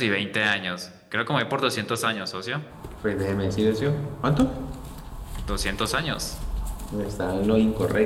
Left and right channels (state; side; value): identical; both; correlation 1.00